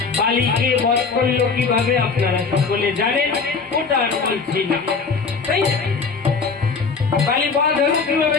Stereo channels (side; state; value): right; quieter; 4.9 dB